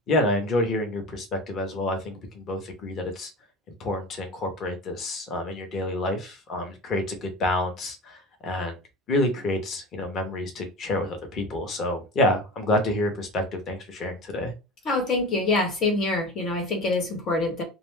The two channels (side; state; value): both; normal; correlation 0.32